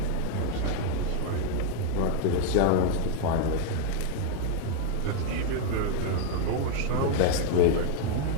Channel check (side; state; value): both; different; correlation 0.00